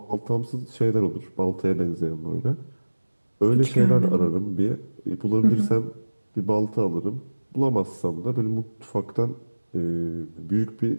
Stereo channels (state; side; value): inverted; both; correlation -1.00